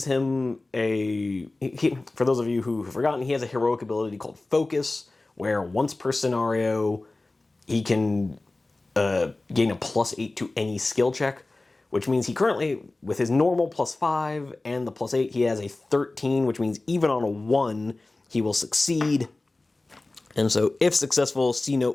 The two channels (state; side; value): quieter; right; 3.1 dB